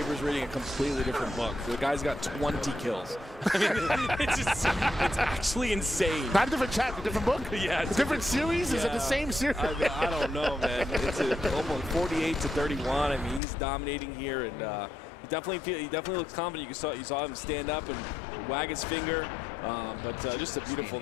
reading a completely different book. The guy's got 20 kills. I mean, it's actually insane. Not a different chapter, different book? Yeah. It's a different series? Yeah. Is it the same series? I don't know, man. It's almost 48-31. I mean, he's dominating here, and he definitely looks confident. You saw him stand up and wag his finger. But just a beautiful.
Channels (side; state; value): right; drops out; at 13.4 s